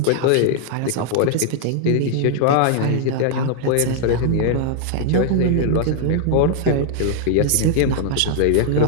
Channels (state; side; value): different; both; correlation -0.01